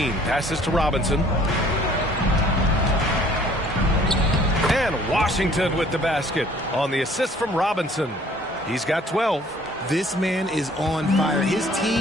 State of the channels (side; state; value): both; normal; correlation 0.56